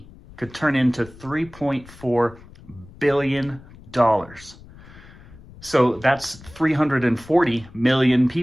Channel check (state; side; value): noise; left; rumble, 21 dB below the sound